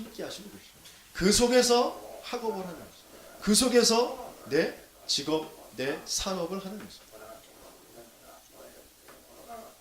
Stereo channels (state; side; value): identical; both; correlation 1.00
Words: 하시고 계십니다. 그 속에서 학업을 하는 것입니다. 그 속에서 내 직업, 내 산업을 하는 것입니다.